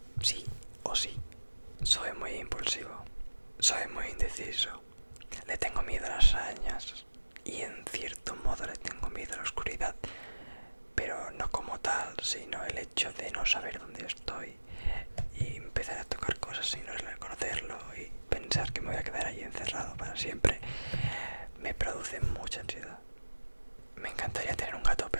Sí o sí. Soy muy impulsivo. Soy muy indeciso. Le tengo miedo a las arañas. Y en cierto modo le tengo miedo a la oscuridad. Pero no como tal, sino el hecho de no saber dónde estoy y empezar a tocar cosas sin reconocerlo y pensar que me voy a quedar ahí encerrado para siempre me produce mucha ansiedad. Me encantaría tener un gato,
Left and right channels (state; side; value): inverted; both; correlation -1.00